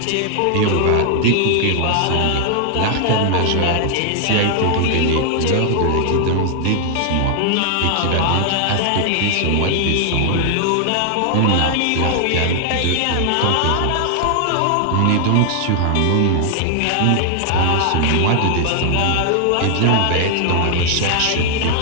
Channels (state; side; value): different; both; correlation 0.00